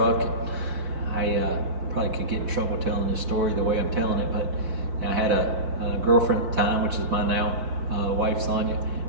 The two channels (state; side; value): late; left; 5.1 ms